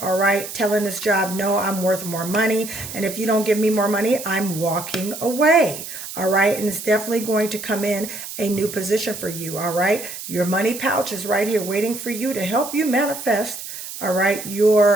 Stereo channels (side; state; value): right; noise; hiss, 10 dB below the sound